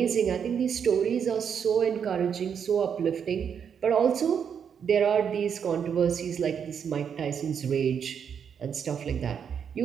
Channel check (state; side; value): quieter; left; 7.5 dB